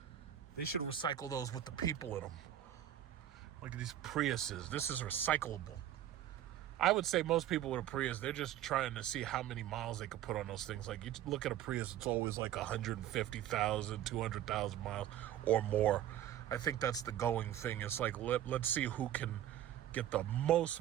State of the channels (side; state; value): left; quieter; 11.8 dB